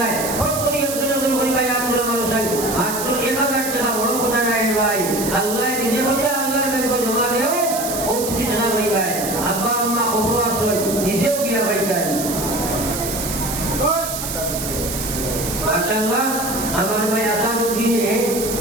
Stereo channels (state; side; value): noise; right; hiss, 5 dB below the sound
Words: নাই ফট করে একজন পরিবার আব্দুল মানুষাই মাত্র 1000 টাকা বড় কথা নাই ভাই আল্লাহ নিজে বলে আল্লাহর ব্যাংক জমা দেও ও তুমি জানা ভাই ভাই আব্বা আম্মা কবর আসয় নিজেও গিয়া ভাই ভাই মাশাআল্লাহ আমার ভাই আসাদুদ্দিনে